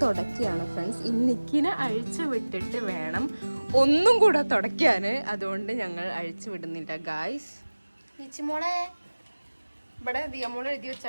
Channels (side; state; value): both; inverted; correlation -1.00